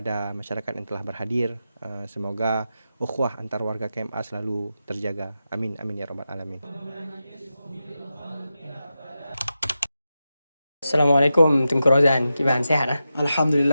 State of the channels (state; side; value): inverted; both; correlation -0.90